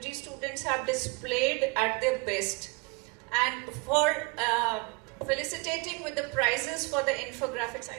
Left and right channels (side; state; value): left; quieter; 29.0 dB